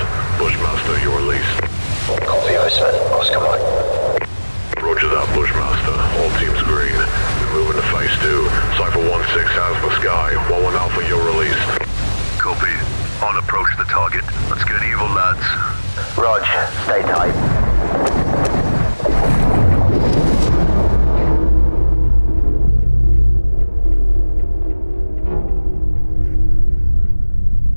Bushmaster, you're released. Copy, Iceman. Oscar Mike. Roger that, Bushmaster. All teams green. We're moving to phase 2. Cypher 1-6 has the sky. 1-1 Alpha, you're released. Copy. On approach to the target. Let's get evil, lads. Rog, stay tight.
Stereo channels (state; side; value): inverted; both; correlation -1.00